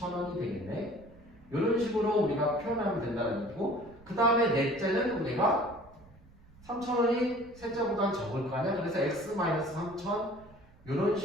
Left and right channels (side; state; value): right; noise; rumble, 24 dB below the sound